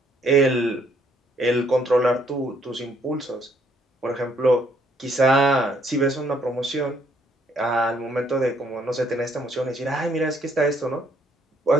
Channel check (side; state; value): both; normal; correlation 0.67